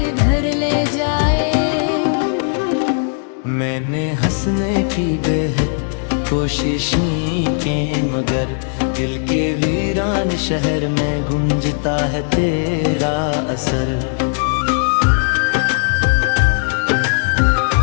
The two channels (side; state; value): right; silent; digital silence